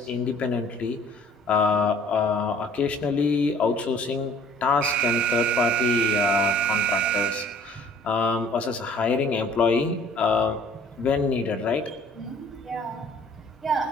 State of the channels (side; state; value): both; normal; correlation 0.53